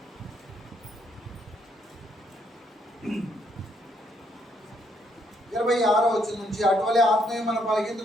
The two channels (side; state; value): both; normal; correlation 0.72